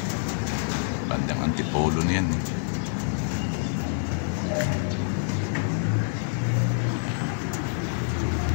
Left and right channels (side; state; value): right; silent; 60 dB below the other